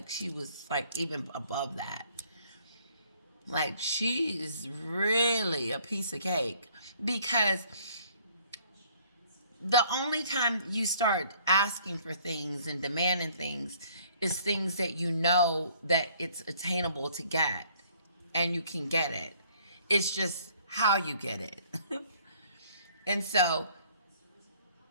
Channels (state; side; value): inverted; both; correlation -0.59